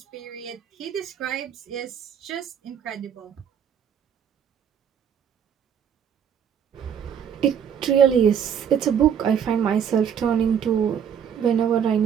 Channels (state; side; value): quieter; left; 8.2 dB